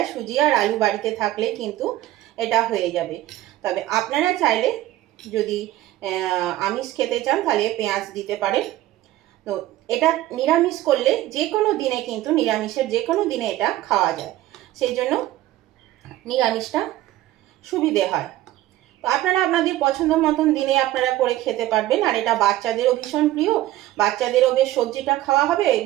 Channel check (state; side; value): quieter; left; 15.2 dB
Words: সুজি আর আলু বাড়িতে থাকলে কিন্তু এটা হয়ে যাবে। তবে আপনারা চাইলে যদি আমিষ খেতে চান তাহলে পেঁয়াজ দিতে পারেন। তো এটা নিরামিষ করলে যে কোনো দিনে, কিন্তু নিরামিষের যে কোনো দিনে এটা খাওয়া যায়, সেই জন্য নিরামিষটা সুবিধে হয়। তো আপনারা আপনাদের পছন্দ মতন দিনে আপনারা করে খেতে পারবেন। আর এটা বাচ্চাদেরও ভীষণ প্রিয়, বাচ্চাদেরও বেশ সবজিটা খাওয়া হবে।